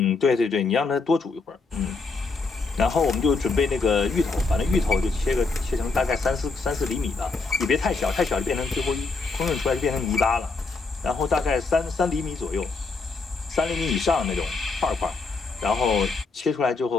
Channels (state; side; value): quieter; right; 4.1 dB